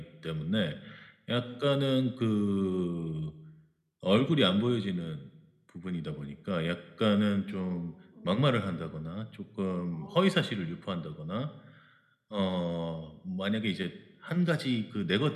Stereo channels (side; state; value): both; identical; correlation 1.00